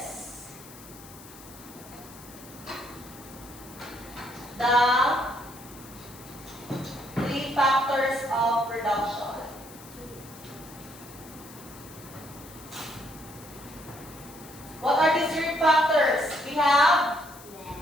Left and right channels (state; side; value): noise; left; hiss, 19 dB below the sound